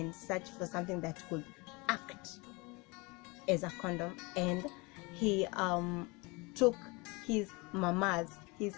searched for something that could act as a condom, and he took his mother's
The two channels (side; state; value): right; quieter; 26.8 dB